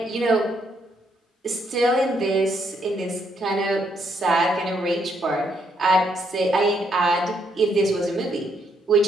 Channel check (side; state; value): both; normal; correlation 0.74